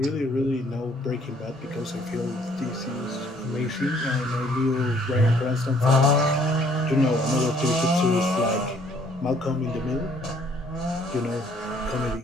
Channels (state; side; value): normal; both; correlation 0.62